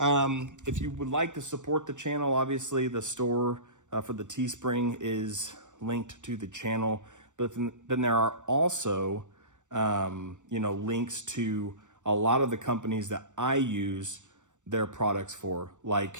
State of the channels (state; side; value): late; left; 0.85 ms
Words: you would like to support the channel, obviously the store for the Teespring is linked to the channel, but then there are also, you know, links to a lot of the companies that I use their products for,